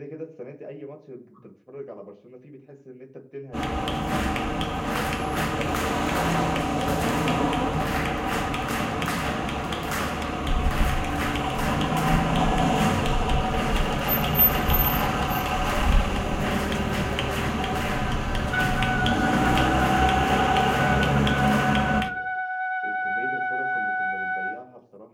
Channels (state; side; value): identical; both; correlation 1.00